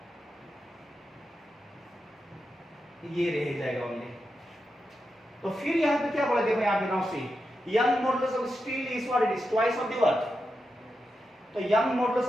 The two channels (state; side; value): normal; both; correlation 0.88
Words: ये रह जाएगा ओनली। तो फिर यहाँ पे क्या बोला, देखो यहाँ पे now see, young modulus of steel is what, it is twice of the what. तो young modulus